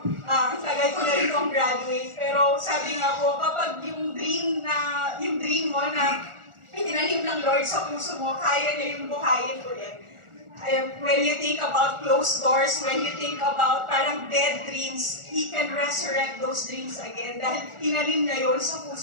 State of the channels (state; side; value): late; left; 1.4 ms